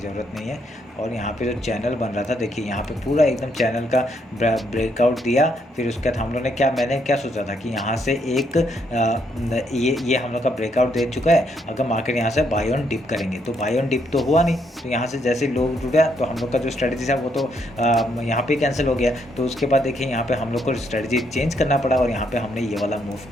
नहीं है। और यहाँ पे जो चैनल बन रहा था, देखिए यहाँ पे पूरा एकदम चैनल का ब्रेकआउट दिया। फिर उसके बाद हम लोग ने मैंने क्या सोचा था कि यहाँ से एक ये हम लोग का ब्रेकआउट दे चुका है, अगर मार्केट यहाँ से बाय ऑन डिप करेंगे, तो बाय ऑन डिप तो हुआ नहीं, तो यहाँ से जैसे लो टूटा तो हम लोग का जो स्ट्रेटजी था वो तो यहाँ पे कैंसिल हो गया। तो उसके बाद देखिए यहाँ पे हम लोग को स्ट्रेटजी चेंज करना पड़ा और यहाँ पे हमने ये वाला मूव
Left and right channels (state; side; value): normal; both; correlation 0.74